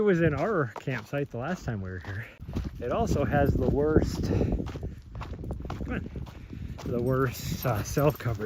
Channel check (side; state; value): both; identical; correlation 1.00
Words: in our campsite the last time we were here. It also has the worst, cell